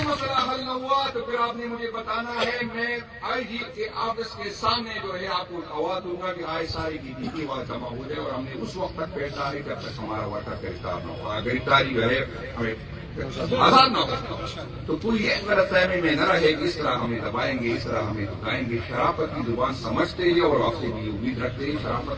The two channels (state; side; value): identical; both; correlation 1.00